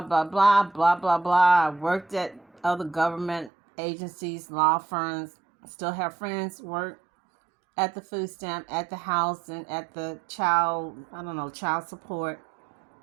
blah blah blah blah. I worked at other government agencies, law firms. Still have friends work at the food stamp, at the house, and at the child support.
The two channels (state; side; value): drops out; left; at 3.5 s